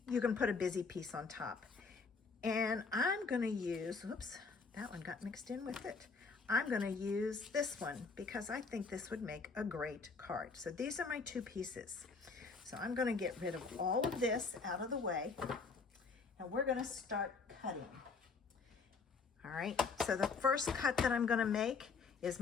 you can put a busy piece on top. And I'm going to use, oops, that one got mixed in with it. I'm going to use this one because I think this would make a great card. So these are my two pieces. So I'm going to get rid of all of this out of the way and we're going to start cutting. All right, so the first cut that I'm going to make is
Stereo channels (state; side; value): quieter; right; 4.7 dB